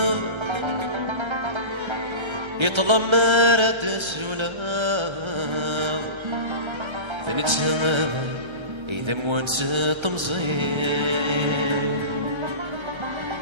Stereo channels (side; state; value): left; late; 1.3 ms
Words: يطلب مرات السولاف ثنتسمى إذا موانس تمزين